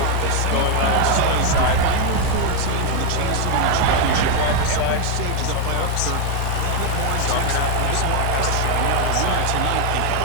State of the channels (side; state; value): both; different; correlation 0.01